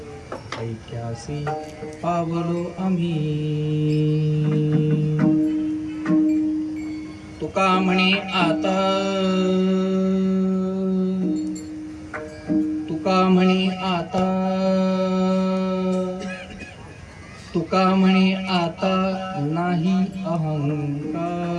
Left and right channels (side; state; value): both; identical; correlation 1.00